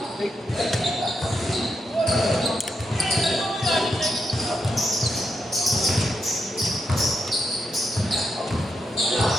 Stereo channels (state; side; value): normal; both; correlation 0.83